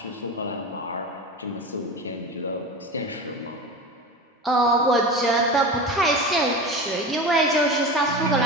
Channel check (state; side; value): normal; both; correlation 0.28